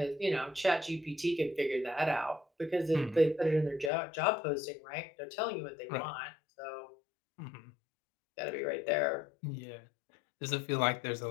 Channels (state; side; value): drops out; right; at 3.9 s